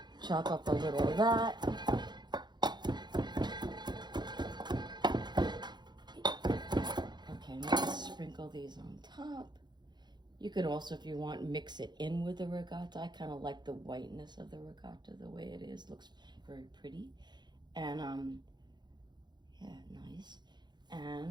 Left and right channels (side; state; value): left; late; 0.21 ms